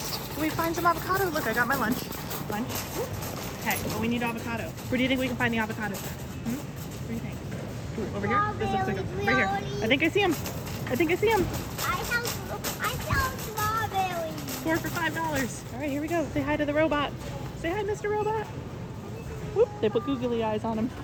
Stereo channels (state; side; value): identical; both; correlation 1.00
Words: Can we find some avocado? Look, I got my lunch. Okay, well, we need avocado. Where do you think we can find the avocados? What do you think? Ooh, over here? This looks like a, right here. I think I see him. I sell strawberries. 4 for $5. All right, here we go. Say hi to the robot. Say hi, Mr. Robot. Whoop, they put googly eyes on him.